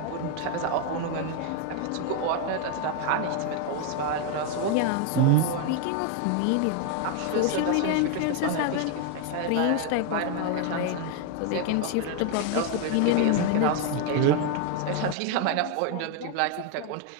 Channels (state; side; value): different; both; correlation 0.01